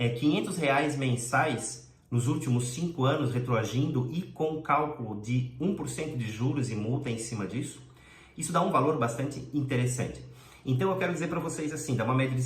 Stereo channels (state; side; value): identical; both; correlation 1.00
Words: mensais nos últimos 5 anos retroagindo e com cálculo de 1% de juros e multa em cima disso? Isso dá um valor bastante interessante. Então eu quero dizer para vocês assim, dá uma média de